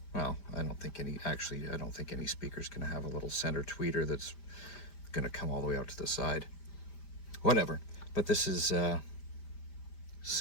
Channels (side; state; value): right; late; 5.0 ms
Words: well, I don't think any speaker's going to have a little center tweeter that's going to come all the way out to the side. Whatever. But this is